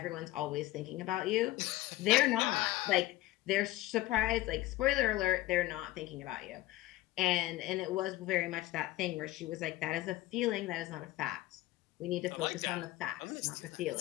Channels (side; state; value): right; quieter; 17.0 dB